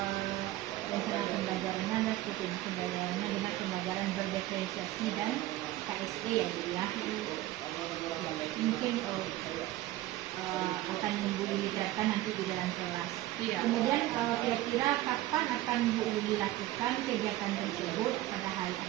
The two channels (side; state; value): left; quieter; 15.8 dB